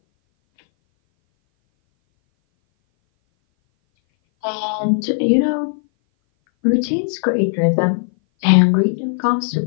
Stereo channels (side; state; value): right; silent; 59 dB below the other